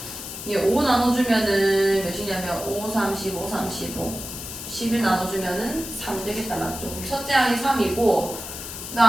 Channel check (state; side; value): noise; left; hiss, 9 dB below the sound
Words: 얘 5 나눠주면은 몇이냐면 5, 35, 35 11 나눠주면은 3 되겠다. 맞죠? 첫째 항이 3이고 그